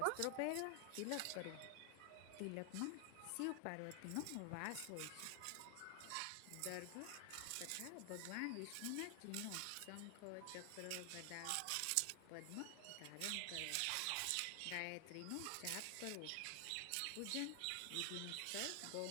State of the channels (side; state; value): both; different; correlation 0.00